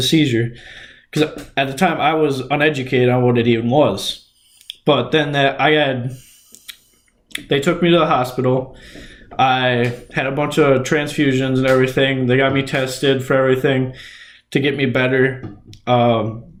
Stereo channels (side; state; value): both; identical; correlation 1.00